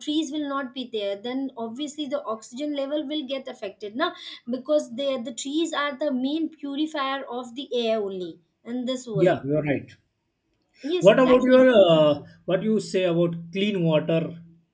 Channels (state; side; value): identical; both; correlation 1.00